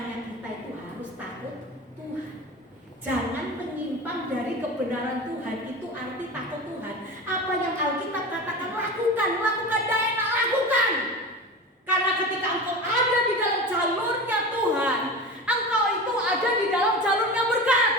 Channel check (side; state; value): both; normal; correlation 0.30